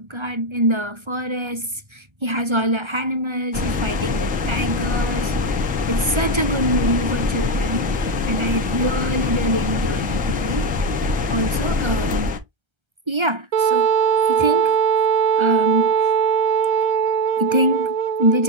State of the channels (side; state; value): left; late; 1.3 ms